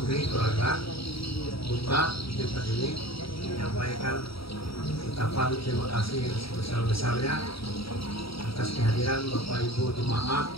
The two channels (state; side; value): late; right; 0.75 ms